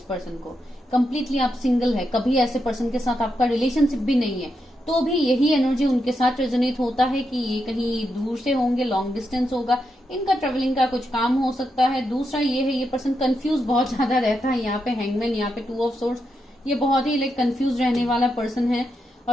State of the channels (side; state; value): both; normal; correlation 0.84